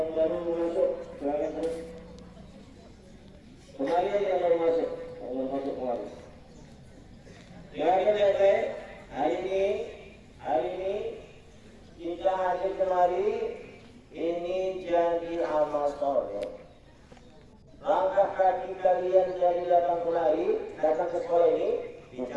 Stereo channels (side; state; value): both; identical; correlation 1.00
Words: baru masuk, silakan terus. Kembali yang baru masuk, kembali. Silakan baik-baik. Hari ini kita hadir kemari. Ini jadi amal soleh. Langkah kaki kalian dari datang kemari, datang ke sekolah ini,